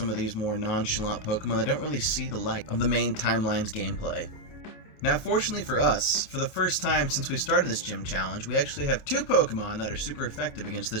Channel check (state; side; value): late; right; 28 ms